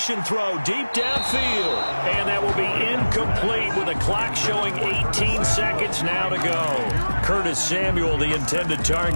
throw deep downfield. And that will be incomplete with the clock showing 18 seconds now to go. Curtis Samuel, the intended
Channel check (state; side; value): inverted; both; correlation -1.00